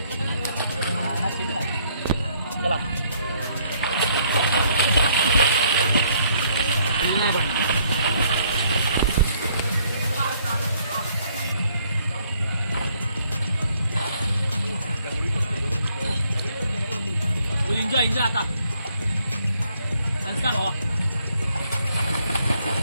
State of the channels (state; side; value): inverted; both; correlation -0.67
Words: चला. एन्जॉय आता संस्कार भावा